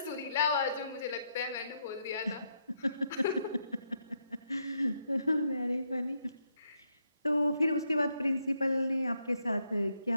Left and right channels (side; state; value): both; inverted; correlation -0.78